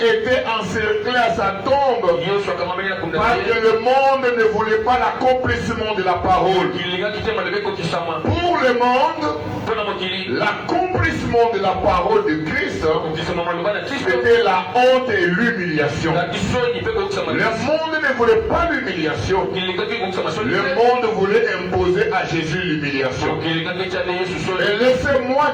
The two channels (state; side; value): identical; both; correlation 1.00